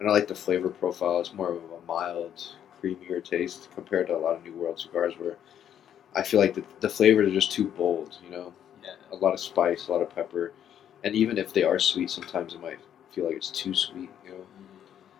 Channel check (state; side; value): quieter; right; 9.8 dB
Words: I like the flavor profile. It's more of a mild, creamier taste compared to a lot of New World cigars where I feel like the flavors are just too bold, you know? Yeah. A lot of spice, a lot of pepper. And even if they are sweet, sometimes it might feel like it's too sweet, you know?